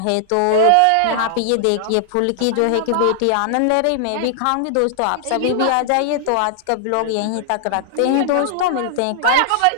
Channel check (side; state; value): both; different; correlation -0.01